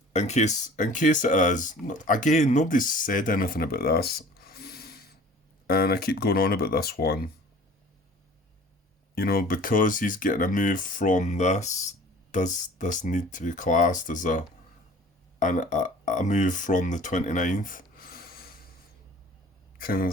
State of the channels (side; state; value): both; normal; correlation 0.46